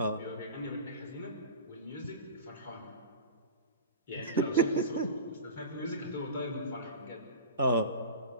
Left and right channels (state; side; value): inverted; both; correlation -0.33